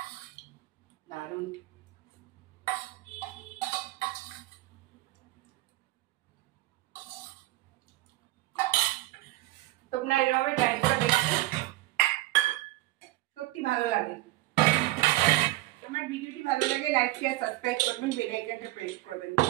দারুণ। তোমরা এভাবে ট্রাই করে দেখো, সত্যি ভালো লাগে। আমার ভিডিওটি ভালো লাগে লাইক শেয়ার সাবস্ক্রাইব করবেন, বেল আইকনটা প্রেস করবেন।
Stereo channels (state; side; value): quieter; left; 18.2 dB